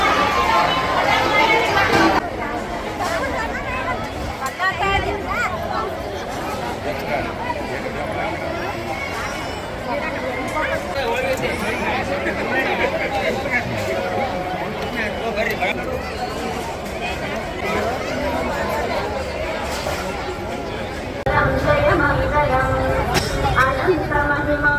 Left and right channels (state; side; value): identical; both; correlation 1.00